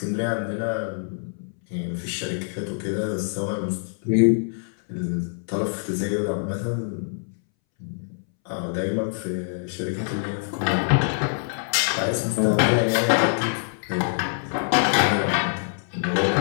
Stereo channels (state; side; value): silent; right; 62 dB below the other